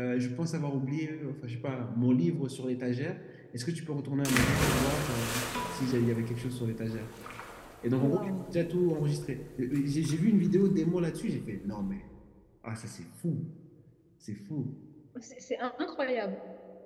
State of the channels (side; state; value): both; identical; correlation 1.00